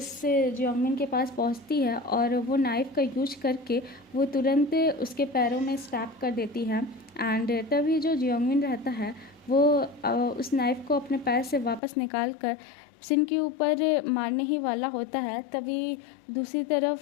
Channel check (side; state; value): right; drops out; at 11.8 s